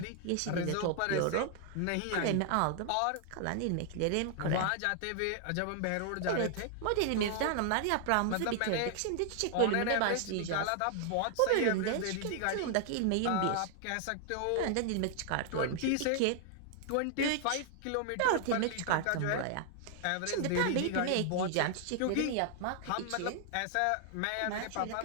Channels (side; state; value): both; different; correlation 0.00